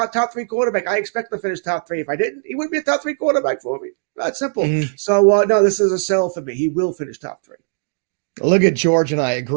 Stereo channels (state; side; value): silent; left; digital silence